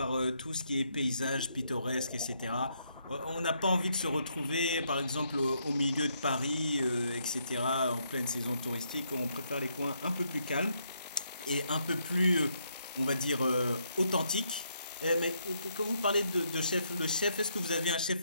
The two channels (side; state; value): both; inverted; correlation -0.75